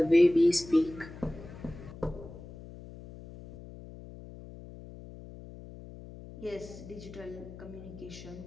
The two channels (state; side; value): noise; left; hum, 15 dB below the sound